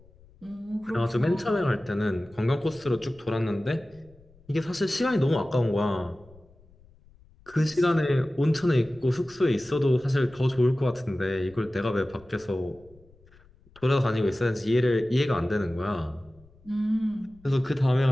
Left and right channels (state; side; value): noise; left; rumble, 27 dB below the sound